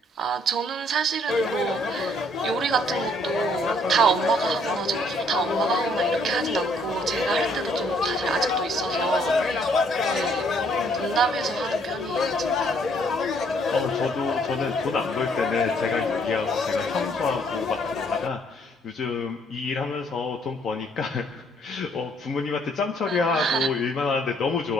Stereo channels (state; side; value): normal; both; correlation 0.66